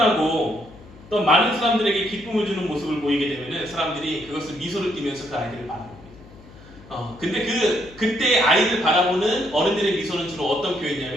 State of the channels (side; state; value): left; noise; hum, 21 dB below the sound